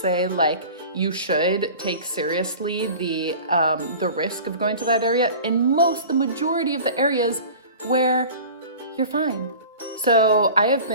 like you should take seriously the risk of going to that area, and the majority of the areas where you're fine. So I have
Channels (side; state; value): both; inverted; correlation -0.39